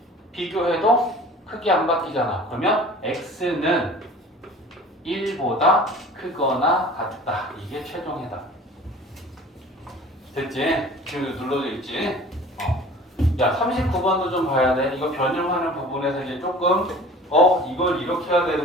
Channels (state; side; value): normal; both; correlation 0.44